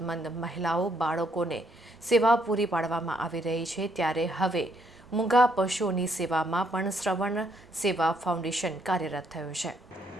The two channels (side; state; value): both; normal; correlation 0.72